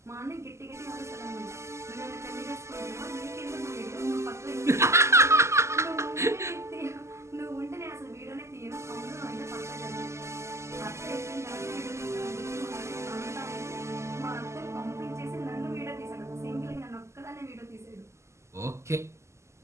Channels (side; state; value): left; late; 0.13 ms